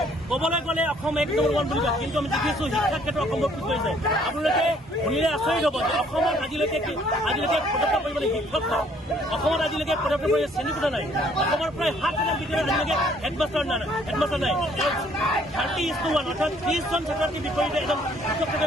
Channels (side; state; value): both; normal; correlation 0.62